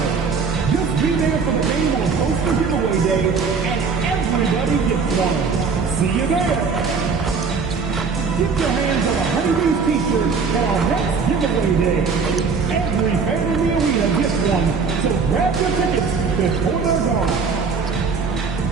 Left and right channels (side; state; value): left; quieter; 5.2 dB